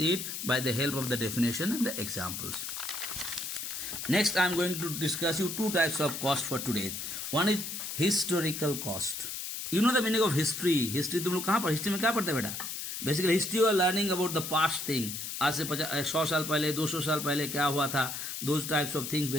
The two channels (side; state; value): left; noise; hiss, 6 dB below the sound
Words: it by the help of the definition and the examples. Next, I am going to discuss you two types of cost for today. One is historical cost. You know the meaning of history. History तुम लोग कहाँ पर, history में क्या पढ़ते बेटा? Basically history you are learning about the past thing. आज से 100 साल पहले 200 साल पहले क्या हुआ था, those types of things